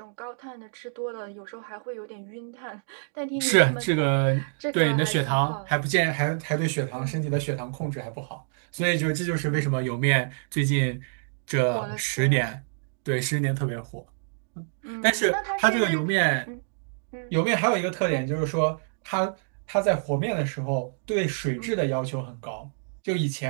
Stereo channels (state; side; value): silent; left; digital silence